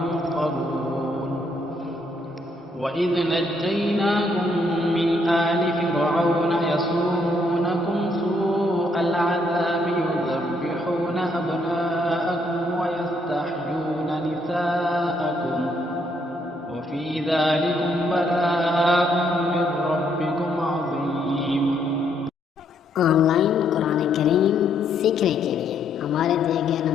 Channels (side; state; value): both; normal; correlation 0.72